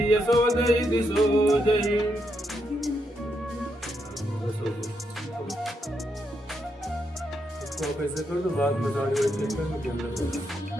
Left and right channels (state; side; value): normal; both; correlation 0.80